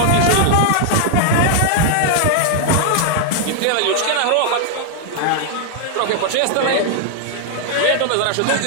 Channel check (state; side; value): different; both; correlation 0.00